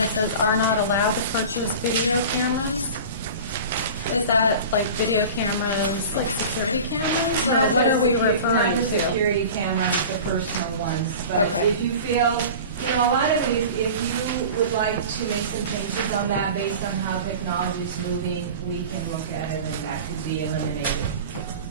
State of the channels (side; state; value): both; inverted; correlation -0.36